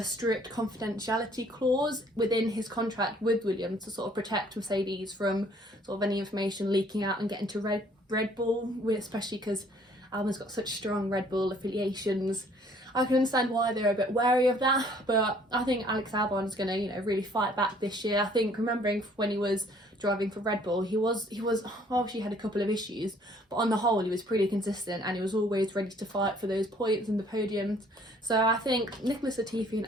strict confidentiality clause within his contract with Williams to sort of protect Mercedes from sort of any information leaking out and getting to Red Bull, especially because Albon's got such strong Red Bull affiliations. I can understand why they're a bit wary of that, but I think Alex Albon is going to, really fight back this year. I think, remembering when he was driving for Red Bull, he obviously had a couple of issues, but on the whole he was pretty consistent and he was always ready to fight for those points and the podiums. So I think Nicholas Latifi and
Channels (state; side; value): normal; both; correlation 0.59